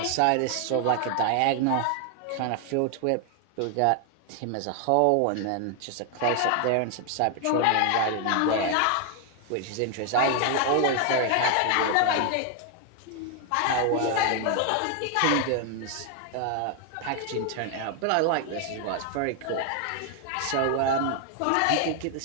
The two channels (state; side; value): different; both; correlation 0.00